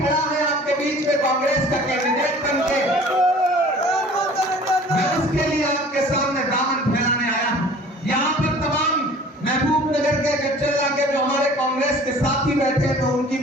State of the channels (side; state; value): both; normal; correlation 0.48